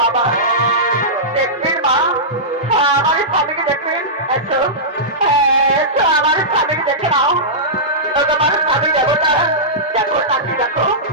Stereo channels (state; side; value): normal; both; correlation -0.15